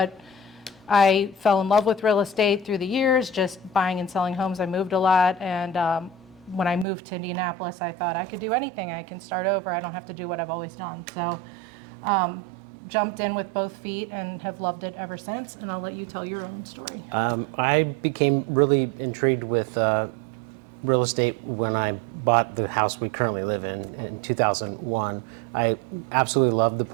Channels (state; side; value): drops out; left; at 6.9 s